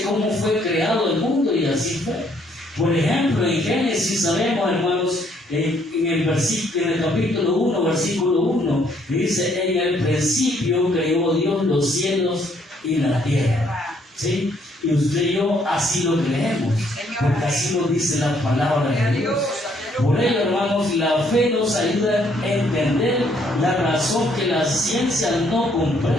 cómo fue creado el mundo y así fue. Por ejemplo, en Génesis sabemos, hermanos, en el capítulo 1, versículo 1, dice: en el principio creó Dios los cielos y la tierra. ¿Sí? Y usted y yo así lo creemos, porque así lo dice la palabra de Dios. Por ello, hermanos, la fe nos ayuda a entender la razón que la ciencia no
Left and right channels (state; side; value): normal; both; correlation 0.68